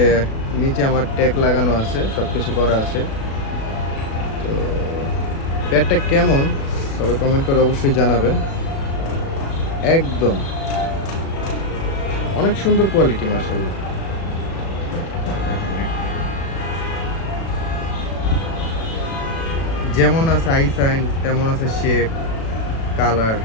নিচে আমার ট্যাগ লাগানো আছে, সব কিছু করা আছে। তো পেটটা কেমন সবাই কমেন্ট করে অবশ্যই জানাবেন। একদম অনেক সুন্দর কোয়ালিটি, মাশাআল্লাহ। দেখেন, যেমন আছে আই সাইন তেমন আছে শেপ, কালার,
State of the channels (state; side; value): late; right; 36 ms